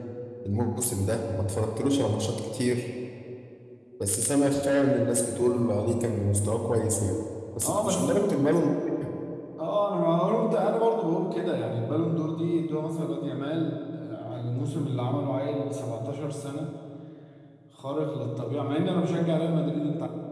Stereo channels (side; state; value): both; identical; correlation 1.00